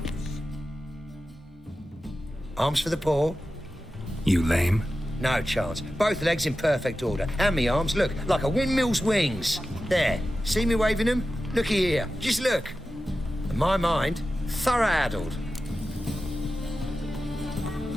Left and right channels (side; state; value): both; normal; correlation 0.93